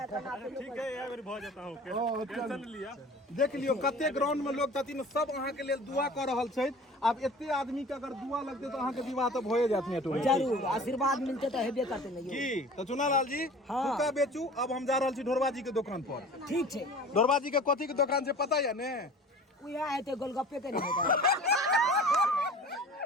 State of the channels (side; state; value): both; normal; correlation 0.42